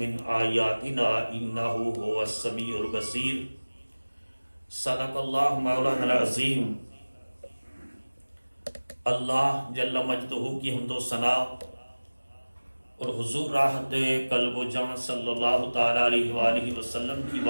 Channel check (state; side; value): inverted; both; correlation -1.00